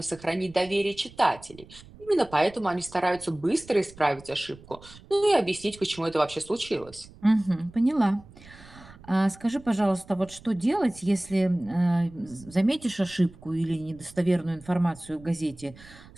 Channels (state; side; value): noise; right; rumble, 21 dB below the sound